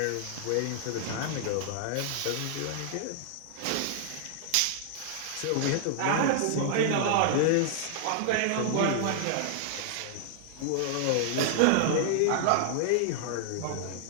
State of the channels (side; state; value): both; different; correlation -0.01